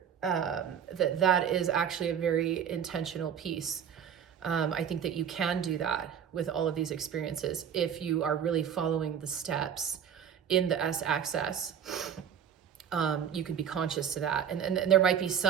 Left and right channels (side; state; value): left; quieter; 8.3 dB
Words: that is actually a very intentional piece. I think that you can do that with all of these experiences if you are really following the steps in the S-axis. You could be conscious to that, and there might be